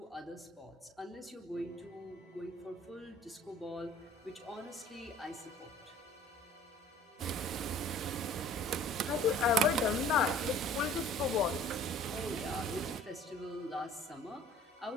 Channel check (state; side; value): normal; both; correlation 0.50